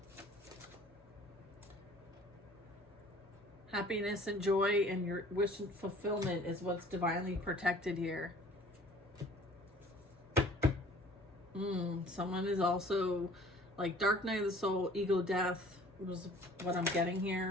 Happiness and joy and your wish and fulfillment is what's divinely protected here. Someone is also like dark night of the soul, ego death was what I'm getting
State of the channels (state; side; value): normal; both; correlation 0.51